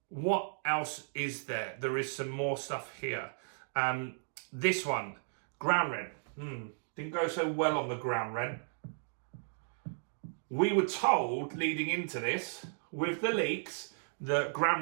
what else is there? There is some more stuff here. This one, ground rent. Didn't go so well on the ground rent. We were told leading into this, with the leaks, that ground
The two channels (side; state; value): left; silent; digital silence